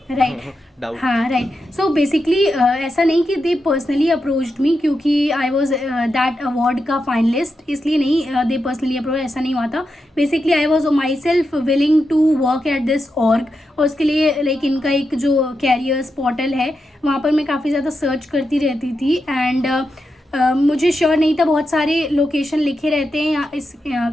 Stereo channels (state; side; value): normal; both; correlation 0.87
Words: right. doubt. हाँ right. So basically ऐसा नहीं कि they personally approached me क्योंकि I was that award का finalist, इसलिए नहीं they personally approach, ऐसा नहीं हुआ था. Basically I was myself willing to work at this org. और उसके लिए लाइक इनका एक जो कैरियर्स पोर्टल है वहाँ पर मैं काफ़ी ज़्यादा सर्च करती रहती थी. एंड मुझे श्योर नहीं था, बहुत सारे लोकेशन लिखे रहते हैं यहाँ इस